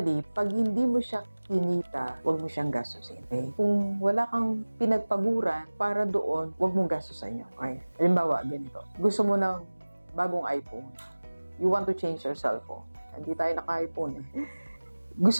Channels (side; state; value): both; inverted; correlation -1.00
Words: pag hindi mo siya kinita, huwag mo siyang gastusin. Okay? Kung wala kang pinagpaguran para doon, huwag mong gastusin yun. Okay? Halimbawa, ganito. Gusto mo ng bagong iPhone. You want to change your cellphone. Hindi tayo naka-iPhone eh.